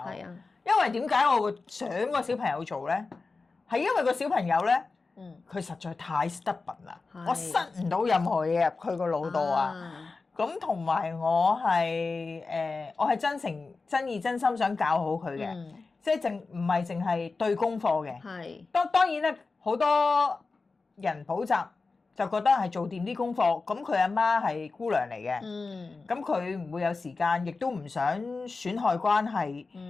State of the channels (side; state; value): right; quieter; 4.0 dB